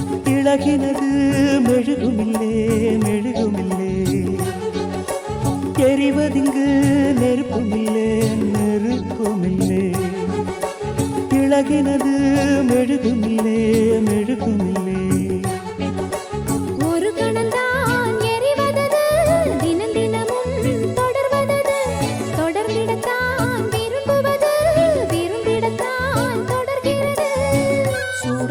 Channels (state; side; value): identical; both; correlation 1.00